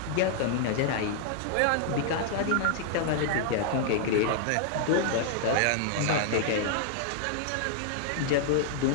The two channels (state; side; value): different; both; correlation -0.01